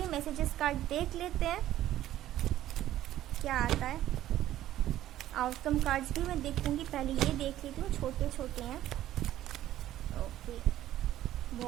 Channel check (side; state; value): left; quieter; 13.3 dB